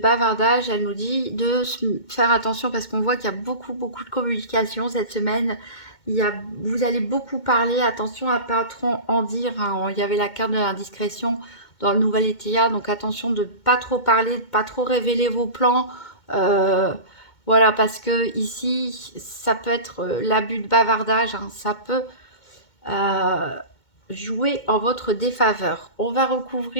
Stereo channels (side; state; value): right; late; 2.2 ms